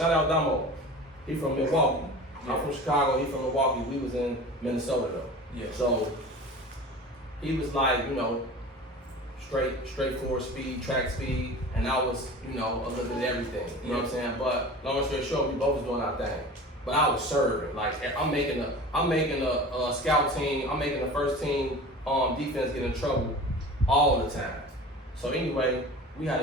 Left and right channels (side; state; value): both; normal; correlation 0.37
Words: out Damo. He from Milwaukee. Yeah. I'm from Chicago, he from Milwaukee. We was in Minnesota though. Yeah. So he was like, you know, straightforward speed, track speed, and I was, you know, a little bit of everything. You know what I'm saying? But long story short, we both was doing our thing. But I was serving. Like I'm making a scout team, I'm making the first team defense get in trouble all the time. So anyway, we had